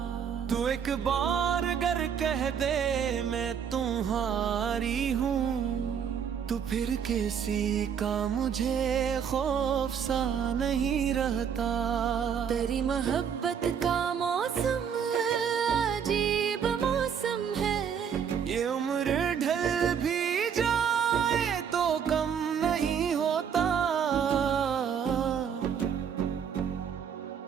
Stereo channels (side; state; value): left; quieter; 7.6 dB